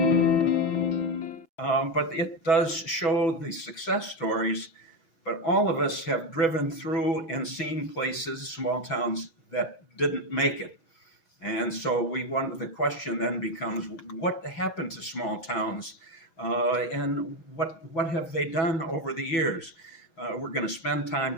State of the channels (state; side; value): late; right; 6.1 ms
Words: But it does show the success stories, but all of us have driven through and seen places, small towns, that didn't make it. And so the question then becomes, what happened to small towns? And what have they done over the years? We're going to spend